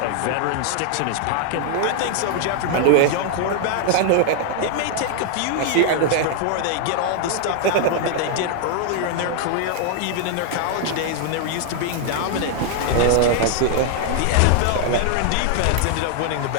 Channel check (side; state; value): both; different; correlation 0.00